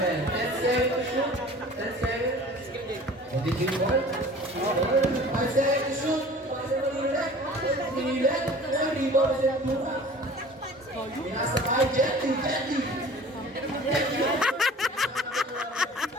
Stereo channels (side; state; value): both; normal; correlation 0.45